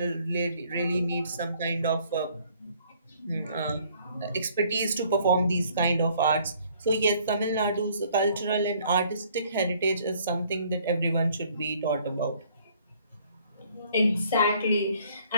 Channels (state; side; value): inverted; both; correlation -0.61